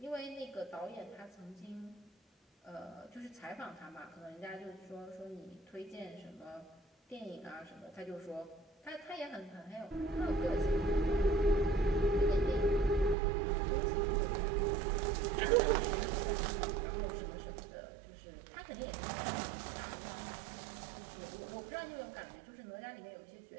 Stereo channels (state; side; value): drops out; left; at 13.2 s